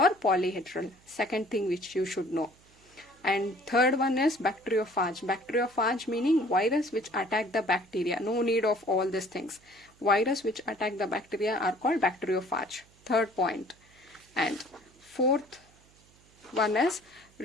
polyhedral. Second thing which you should know. And third one is bacteriophage. Bacteriophage meaning virus which attack the bacteria. No need of all these things. Virus which attack the bacteria are called bacteriophage. Third point. And fourth one is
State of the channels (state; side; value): noise; right; hum, 29 dB below the sound